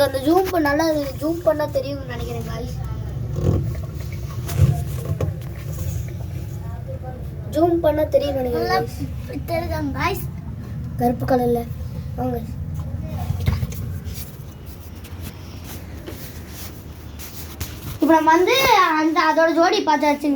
அந்த ஜூம் பண்ணா தெரியும்னு நினைக்கிறேன் गाइस. ஜூம் பண்ணா தெரியும் நினைக்கிறேன் தெரியுதாங்க गाइस. கருப்பு கலர்ல வாங்க. இப்போ நம்ம வந்து அதோட ஜோடி பார்த்தாச்சு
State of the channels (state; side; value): identical; both; correlation 1.00